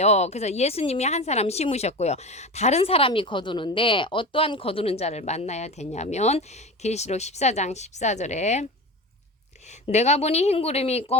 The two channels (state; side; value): normal; both; correlation 0.29